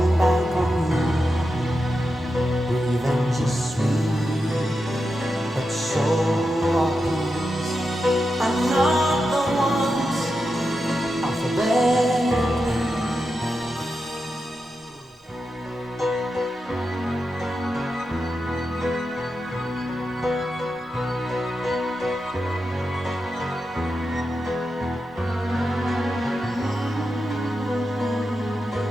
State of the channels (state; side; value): normal; both; correlation 0.89